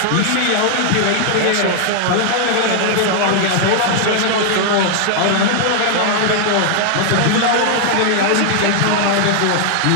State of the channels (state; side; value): different; both; correlation 0.00